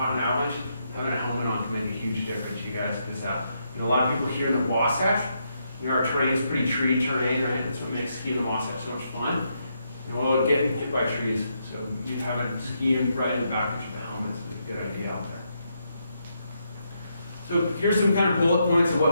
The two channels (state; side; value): inverted; both; correlation -0.79